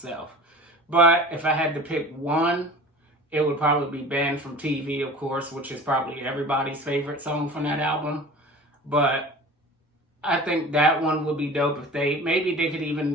But if I had to pick one, it would probably be Banned from TV, of course, which is probably everybody's favorite song from that album. But I think that one would be dope if maybe they could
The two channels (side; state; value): both; normal; correlation 0.39